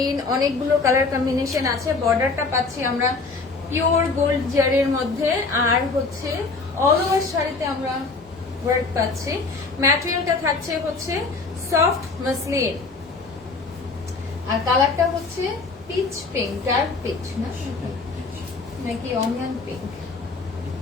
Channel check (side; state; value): right; quieter; 4.0 dB